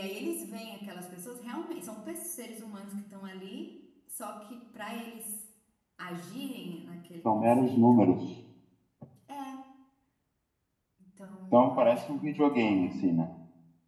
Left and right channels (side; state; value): both; identical; correlation 1.00